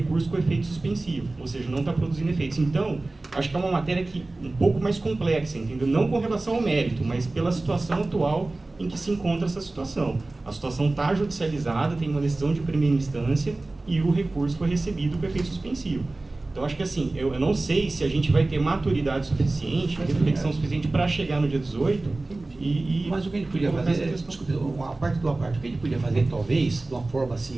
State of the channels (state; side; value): quieter; left; 3.1 dB